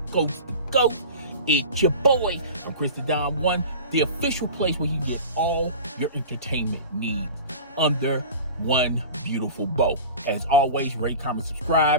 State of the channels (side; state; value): both; inverted; correlation -0.35